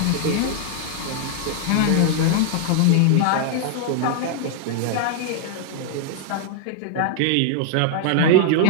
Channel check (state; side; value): different; both; correlation -0.01